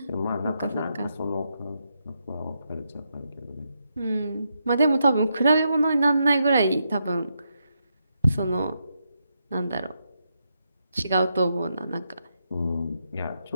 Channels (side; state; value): both; inverted; correlation -0.82